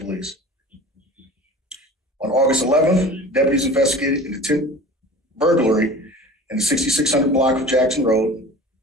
On August 11th, deputies investigated an attempted burglary in the 6600 block of Jackson Road.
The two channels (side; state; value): both; normal; correlation 0.39